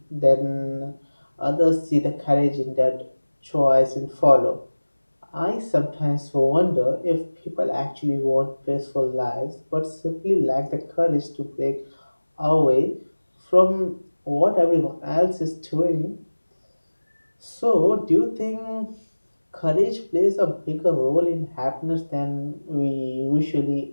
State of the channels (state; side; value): inverted; both; correlation -1.00